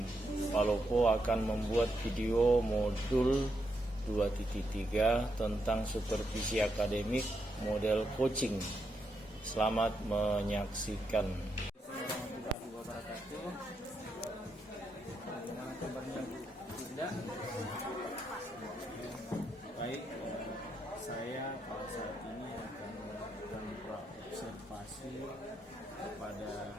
Palopo, akan membuat video modul 2.3 tentang supervisi akademik model coaching. Selamat menyaksikan. Warahmatullahi wabarakatuh. Bagaimana kabarnya Bu Linda? Baik, saya pada saat ini akan melakukan observasi kepada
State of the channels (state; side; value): normal; both; correlation 0.81